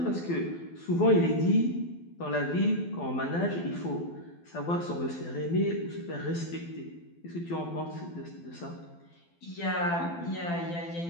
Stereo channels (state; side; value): late; right; 12 ms